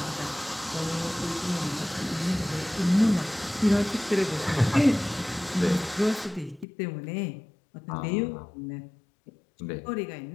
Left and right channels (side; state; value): right; drops out; at 6.7 s